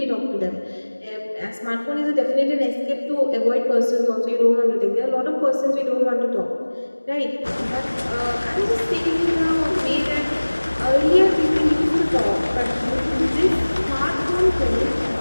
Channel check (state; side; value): inverted; both; correlation -1.00